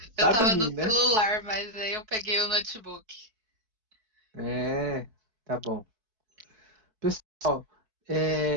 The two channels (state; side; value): late; left; 4.6 ms